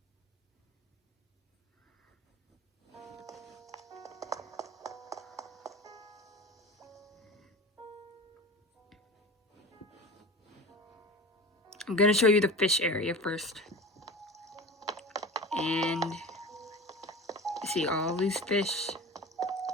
I'm gonna show you the fish area first. And you see all these fish.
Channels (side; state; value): both; normal; correlation 0.33